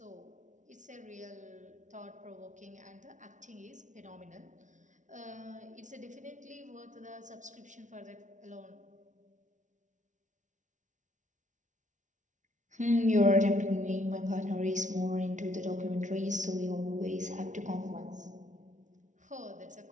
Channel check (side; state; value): left; late; 0.36 ms